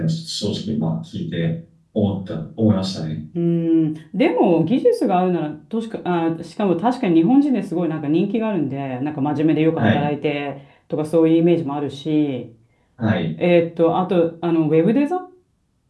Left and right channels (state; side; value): identical; both; correlation 1.00